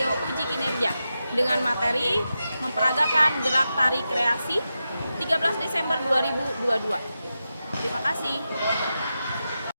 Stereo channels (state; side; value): inverted; both; correlation -0.90